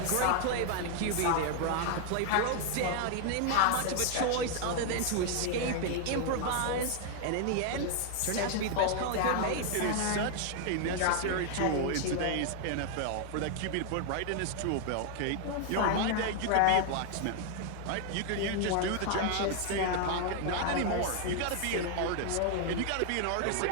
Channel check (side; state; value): both; different; correlation 0.00